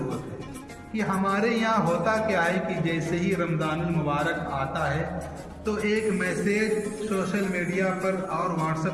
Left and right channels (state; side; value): identical; both; correlation 1.00